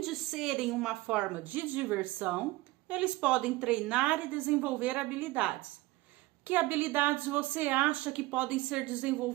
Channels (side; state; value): left; quieter; 19.8 dB